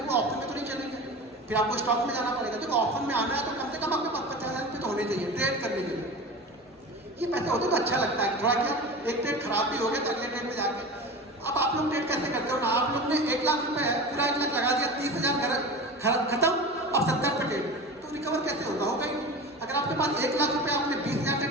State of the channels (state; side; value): normal; both; correlation 0.31